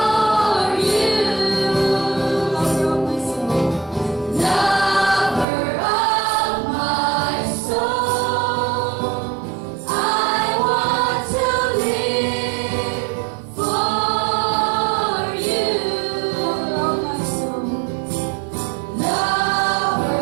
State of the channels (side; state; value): left; drops out; at 5.5 s